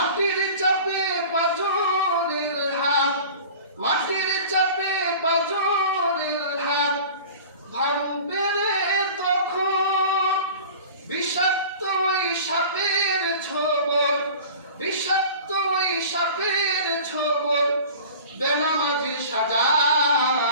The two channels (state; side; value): inverted; both; correlation -0.41